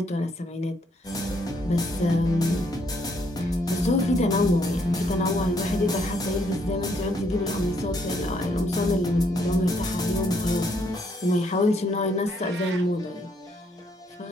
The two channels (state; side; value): normal; both; correlation 0.71